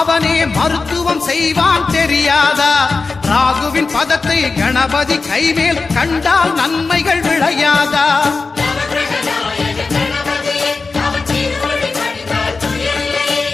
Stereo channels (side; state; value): right; quieter; 4.1 dB